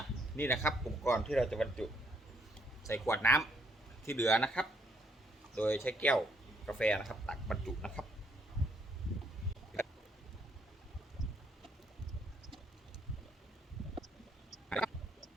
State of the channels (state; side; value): normal; both; correlation 0.70